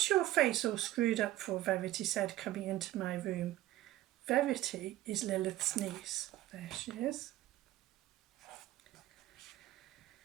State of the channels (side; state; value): left; quieter; 15.2 dB